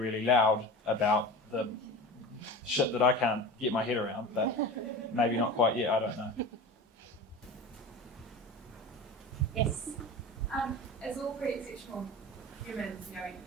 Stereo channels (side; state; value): both; normal; correlation 0.32